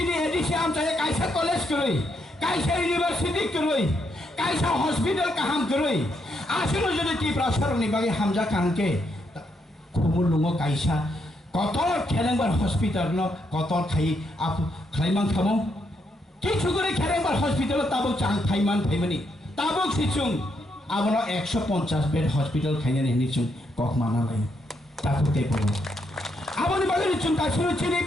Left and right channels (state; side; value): normal; both; correlation 0.78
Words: ADC আমচায় কাইসা college করই কাইসা ইউনিভার্সিটি করই কাইসা হসপিটাল কাহাম করই আসলে যদি ত্রিপুরা সরকারনি বাগে হামজা কানকে Lumgo kaisa kotor Kerengbar hospital no kotor khai ap khlaimang thamo kichu gore Kerengbar hospital tabo chang thaiman thaimani tabo sichung abono 150 bed hospital khainani nichung kokmana lai takote poro aboni bagani chung tasiro chini